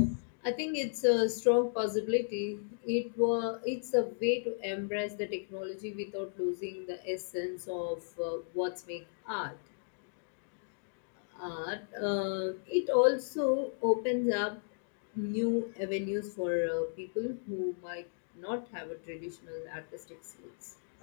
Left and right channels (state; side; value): silent; right; digital silence